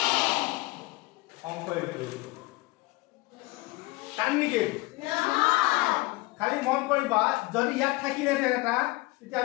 অংক এইটো টান নেকি খালি মন কৰিবা যদি ইয়াত থাকিলে এটা তেতিয়া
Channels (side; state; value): right; quieter; 22.4 dB